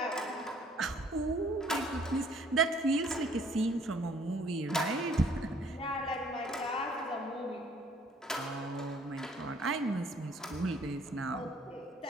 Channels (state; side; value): normal; both; correlation 0.59